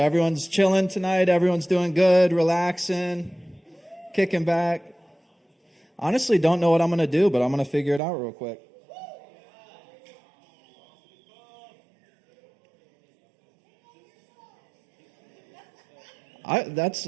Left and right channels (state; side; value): drops out; left; at 8.0 s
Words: everyone's chilling tonight. Everyone's doing good, relaxing, kicking back. Honestly, don't know what I'm going to do, but I'm going to figure it out real quick.